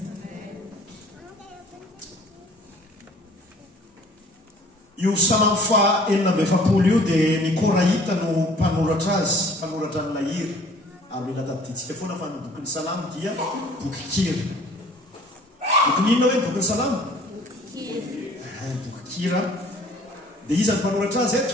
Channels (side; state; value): both; normal; correlation 0.53